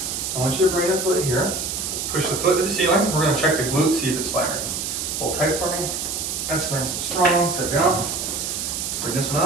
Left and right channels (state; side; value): noise; right; hiss, 3 dB below the sound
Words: I want you to bring the foot here, push the foot to the ceiling. We're going to check the glute, see if it's firing. Hold tight for me. That's nice and strong. Set down. Bring this one